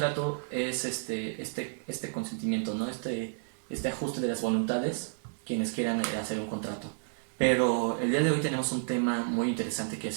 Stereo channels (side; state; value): left; silent; digital silence